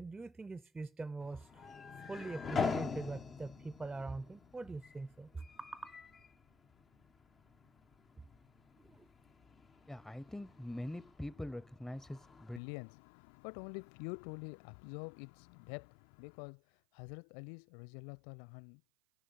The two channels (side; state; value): right; drops out; at 12.6 s